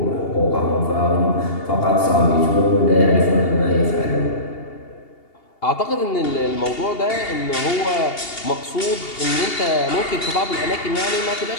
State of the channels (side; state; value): right; late; 2.8 ms